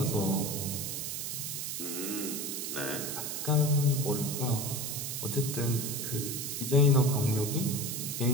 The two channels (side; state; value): right; noise; hiss, 3 dB below the sound